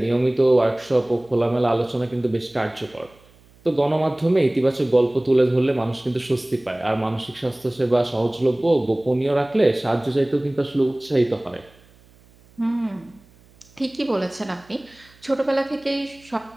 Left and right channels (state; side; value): noise; right; hum, 28 dB below the sound